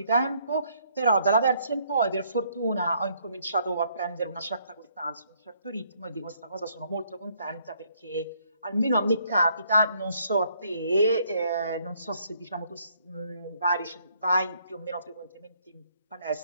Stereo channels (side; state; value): both; inverted; correlation -0.68